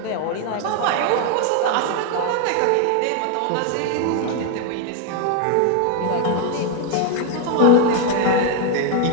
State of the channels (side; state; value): both; different; correlation 0.01